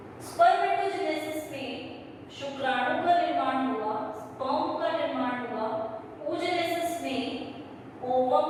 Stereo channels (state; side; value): identical; both; correlation 1.00